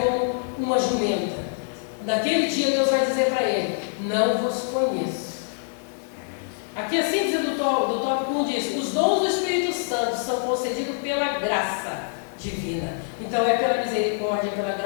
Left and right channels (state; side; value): silent; right; 62 dB below the other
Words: como uma jumenta. Naquele dia Deus vai dizer para ele: não vos conheço. Aqui a síntese do tópico 1 diz: os dons do Espírito Santo são concedidos pela graça divina. Então é pela misericórdia, pela